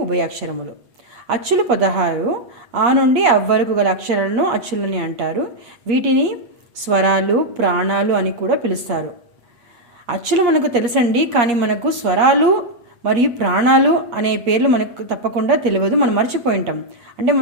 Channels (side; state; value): left; late; 8.5 ms